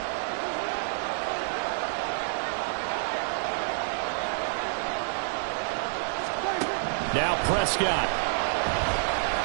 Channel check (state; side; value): silent; left; digital silence